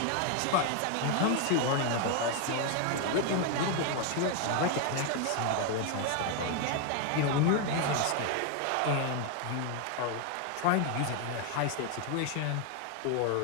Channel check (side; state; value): both; different; correlation 0.01